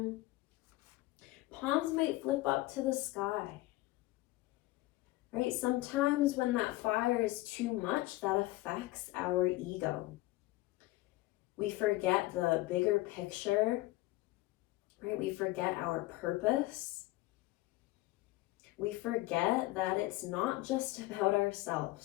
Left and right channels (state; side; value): quieter; right; 19.1 dB